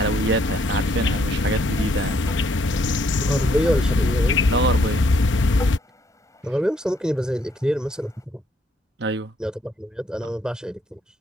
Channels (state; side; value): normal; both; correlation 0.69